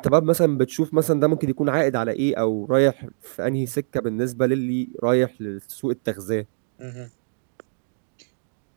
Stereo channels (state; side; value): silent; left; digital silence